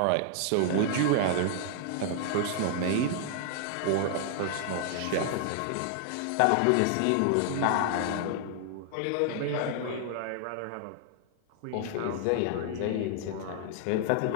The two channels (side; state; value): both; different; correlation -0.01